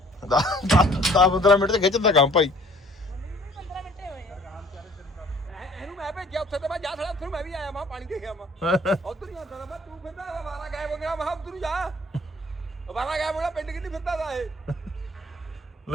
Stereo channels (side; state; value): both; normal; correlation 0.55